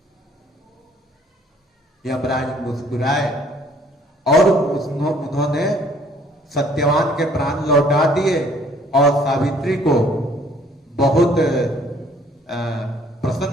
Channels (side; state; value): both; normal; correlation 0.59